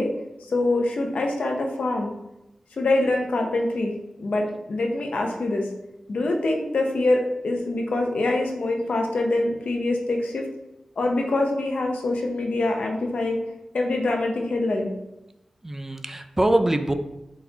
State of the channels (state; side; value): normal; both; correlation 0.93